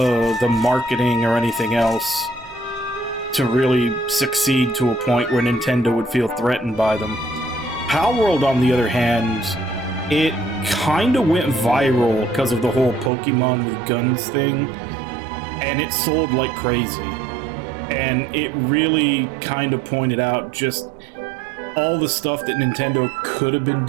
marketing or anything else to really succeed to a point where Nintendo would feel threatened by them. Palworld, on the other hand, it kind of went viral because of the whole Pokemon with guns thing, and it sold like crazy. And it really kind of pointed out just all the stuff that Nintendo could have been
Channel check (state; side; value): drops out; left; at 13.1 s